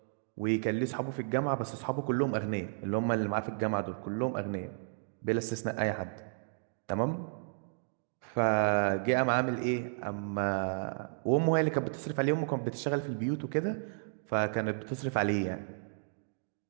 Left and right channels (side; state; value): left; silent; digital silence